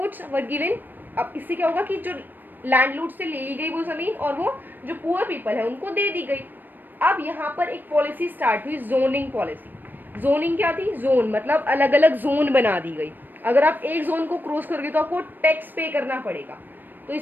वर गिवन। अब इससे क्या होगा कि जो लैंडलॉर्ड से ले ली गई वो जमीन और वो जो पुअर पीपल है उनको दे दी गई। अब यहाँ पर एक पॉलिसी स्टार्ट हुई, जोनिंग पॉलिसी। जोनिंग क्या थी, जोन मतलब अलग अलग जोन बना दी गई। अगर आप एक जोन को क्रॉस करोगे तो आपको टैक्स पे करना पड़ेगा। तो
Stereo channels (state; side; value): late; left; 0.091 ms